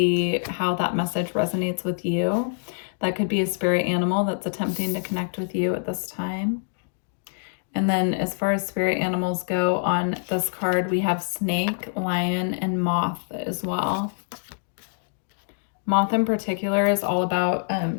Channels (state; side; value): silent; right; digital silence